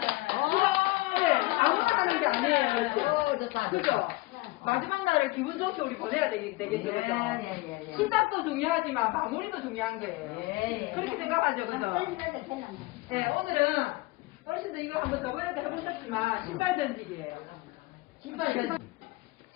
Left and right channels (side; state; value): right; quieter; 21.4 dB